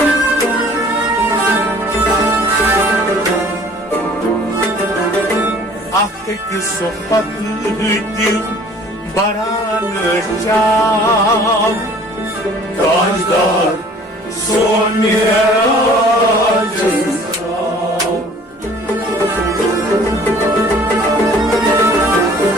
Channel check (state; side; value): normal; both; correlation 0.52